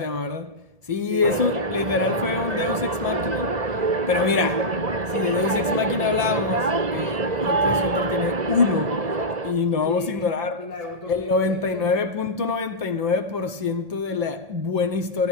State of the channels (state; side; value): late; left; 1.8 ms